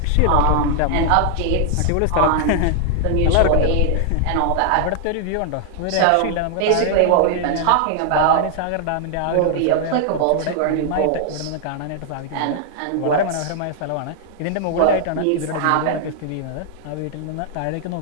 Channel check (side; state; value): both; different; correlation 0.00